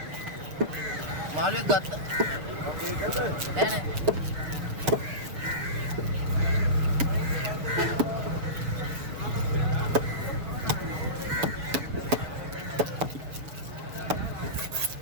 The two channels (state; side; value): late; left; 7.2 ms